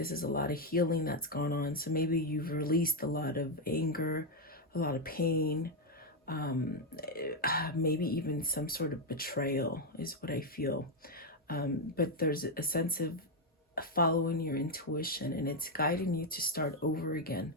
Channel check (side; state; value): both; normal; correlation 0.02